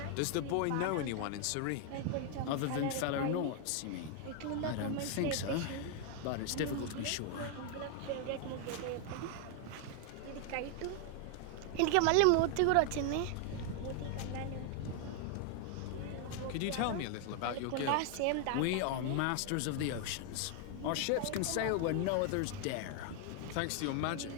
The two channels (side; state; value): both; different; correlation 0.00